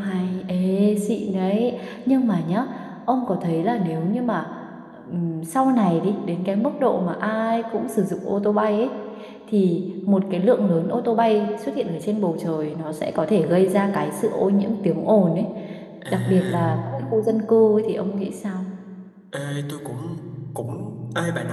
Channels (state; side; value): identical; both; correlation 1.00